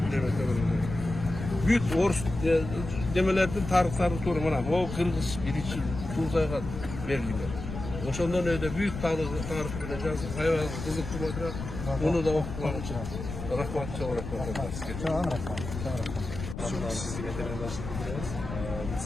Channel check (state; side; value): noise; left; rumble, 8 dB below the sound